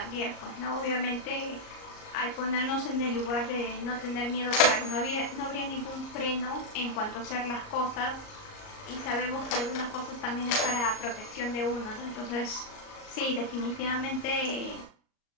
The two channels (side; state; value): right; late; 38 ms